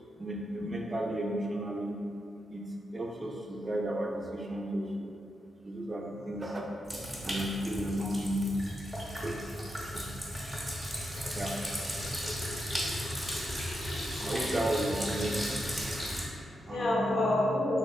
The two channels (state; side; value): normal; both; correlation 0.85